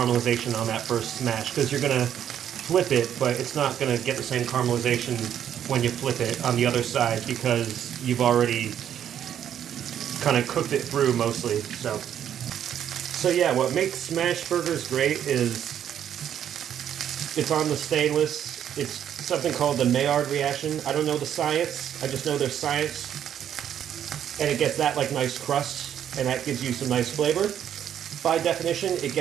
on that first smash, because you're gonna flip it, but it's not gonna get the same caramelization when you flip it on the other side because you've already kind of cooked it through mostly. So yeah, what makes smash burgers great is it's on the stainless. It's something called the Maillard reaction. I don't know the science. I just know there's science. And it gets that like nice crust, and that gives you some nice flavor. By definition, it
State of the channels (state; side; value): quieter; left; 9.7 dB